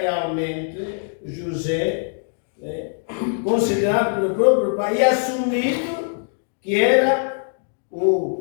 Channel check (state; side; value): silent; right; digital silence